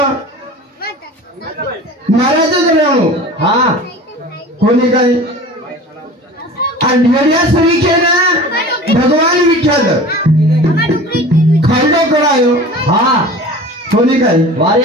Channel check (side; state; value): both; normal; correlation 0.39